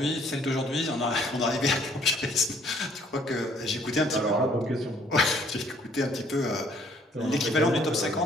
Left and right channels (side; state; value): both; normal; correlation 0.62